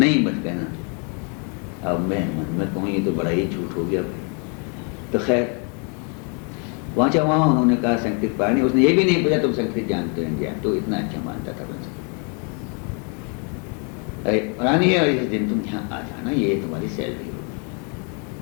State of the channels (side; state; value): right; quieter; 37.4 dB